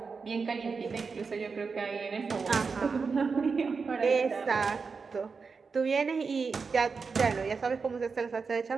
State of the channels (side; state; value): left; quieter; 5.0 dB